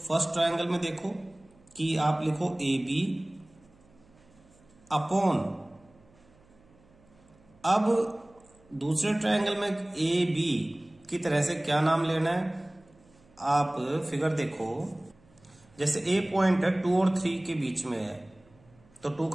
ट्रायंगल में देखो कि आप लिखो ए बी अपॉन, अब दूसरे ट्रायंगल में ए बी की तरह से क्या नाम लेना है? आप फिगर देखो, जैसे ए पॉइंट है 2 और 3 के बीच में है, तो 2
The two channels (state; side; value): noise; right; hum, 29 dB below the sound